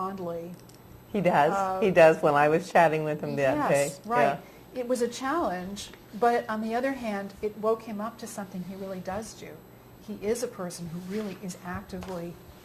He does. He does when I was chatting with him that day. Yes, right. It was a challenge, but on the other hand, it woke him up to something he really does do. He is a person who really is actively,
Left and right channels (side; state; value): both; identical; correlation 1.00